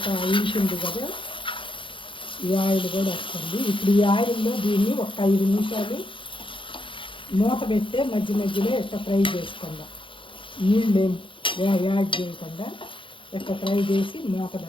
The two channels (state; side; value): late; right; 0.25 ms